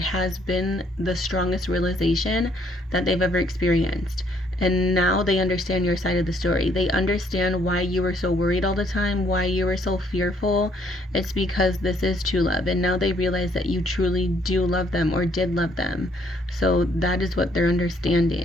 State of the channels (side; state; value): both; normal; correlation 0.67